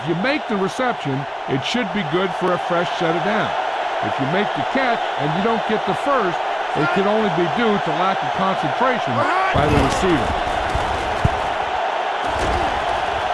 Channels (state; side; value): identical; both; correlation 1.00